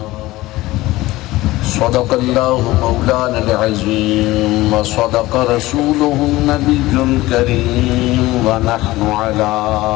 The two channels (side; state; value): right; quieter; 18.3 dB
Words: صدق الله مولانا العظيم وصدق رسوله النبي الكريم ونحن على